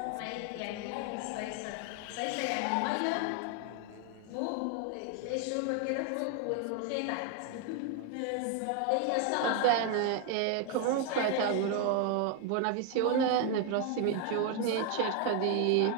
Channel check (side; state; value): both; different; correlation 0.01